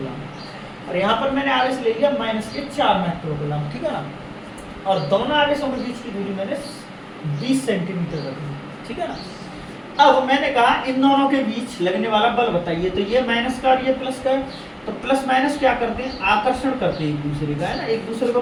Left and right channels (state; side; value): identical; both; correlation 1.00